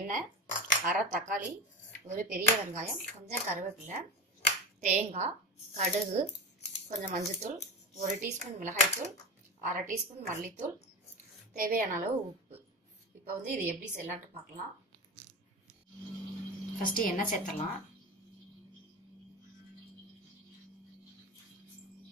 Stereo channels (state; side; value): normal; both; correlation 0.25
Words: அரை தக்காளி, ஒரு பெரிய வெங்காயம், கொஞ்சம் கருவேப்பிலை, தேங்காய், கடுகு, கொஞ்சம் மஞ்சத்தூள், 1 டீஸ்பூன் மிளகாய்த்தூள், அரை டீஸ்பூன் மல்லித்தூள், தேவையான அளவு உப்பு. இப்போ வந்து இது எப்படி செய்யலான்ட்டு பார்க்கலாம். ஃபர்ஸ்ட் எண்ணெய் சேர்த்துடலாம்.